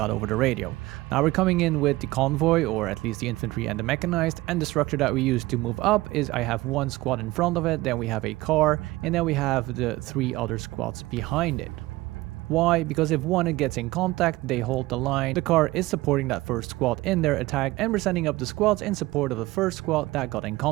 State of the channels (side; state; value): left; quieter; 19.1 dB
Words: over the radio. Now we're coming in with the convoy, or at least the infantry and the mechanized, and the structure that we use to move up is I have one squad in front of it, then we have a car, and then we have the 3 other squads behind it. Why? Because if one gets in contact, they hold the line. The car is supporting that first squad in their attack, and we're sending up the squads in support of the first squad that got in